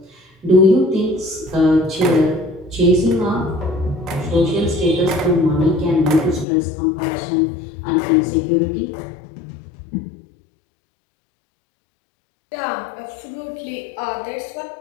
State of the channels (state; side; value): drops out; right; at 6.5 s